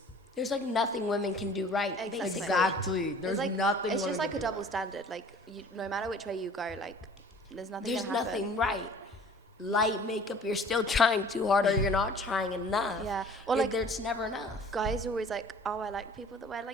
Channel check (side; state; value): both; normal; correlation 0.49